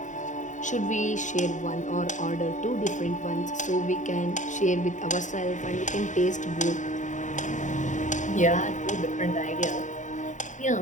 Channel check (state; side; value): late; right; 0.36 ms